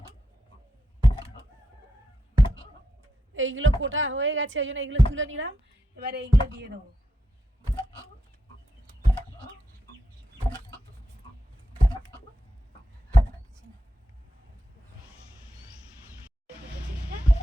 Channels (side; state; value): both; normal; correlation 0.85